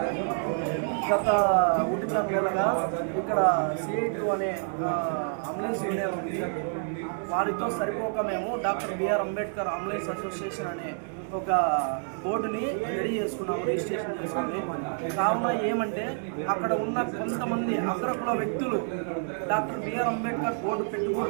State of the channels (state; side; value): silent; left; 59 dB below the other